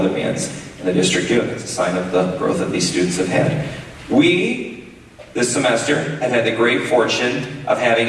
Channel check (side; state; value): both; identical; correlation 1.00